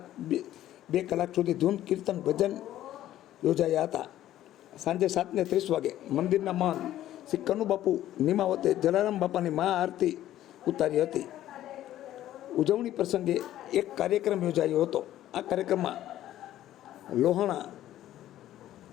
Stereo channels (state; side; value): quieter; right; 13.1 dB